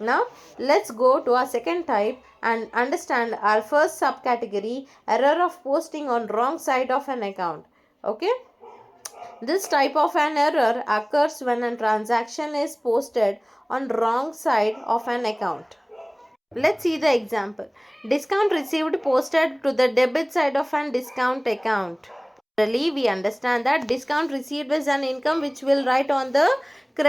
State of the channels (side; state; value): both; identical; correlation 1.00